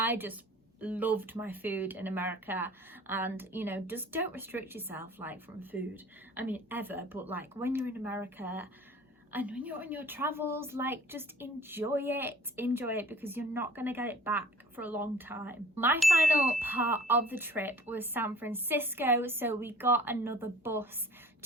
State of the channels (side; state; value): both; normal; correlation 0.47